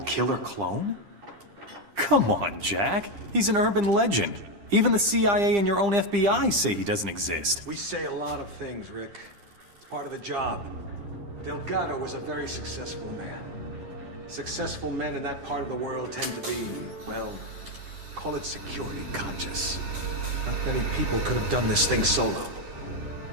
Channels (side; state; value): left; late; 10 ms